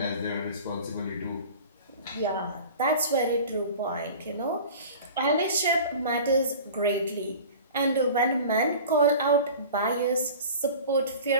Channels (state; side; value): inverted; both; correlation -0.40